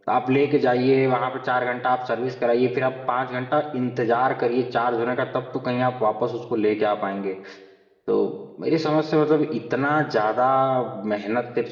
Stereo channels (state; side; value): identical; both; correlation 1.00